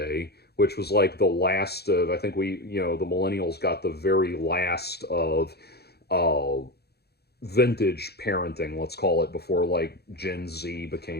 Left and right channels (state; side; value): late; right; 0.47 ms